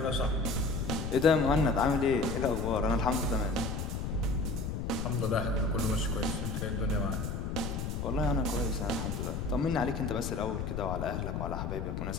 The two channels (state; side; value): noise; left; rumble, 3 dB below the sound